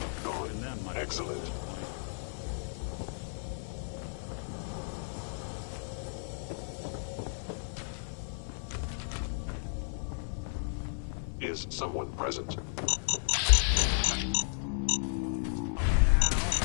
Gone. Excellent. Is someone present?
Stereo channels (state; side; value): silent; right; 55 dB below the other